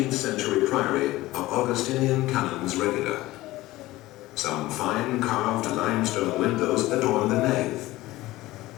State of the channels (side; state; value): right; quieter; 17.8 dB